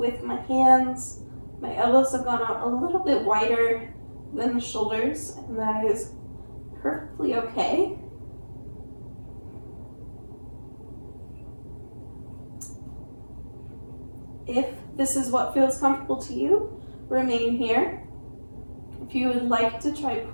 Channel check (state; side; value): inverted; both; correlation -1.00